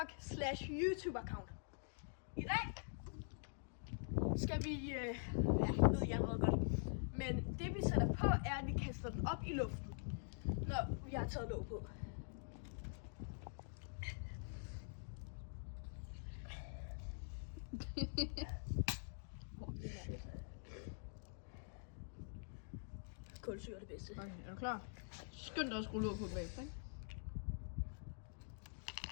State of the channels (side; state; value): right; silent; digital silence